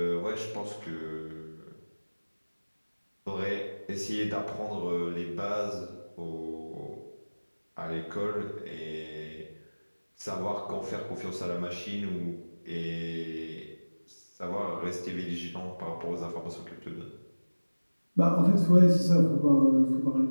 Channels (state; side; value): inverted; both; correlation -1.00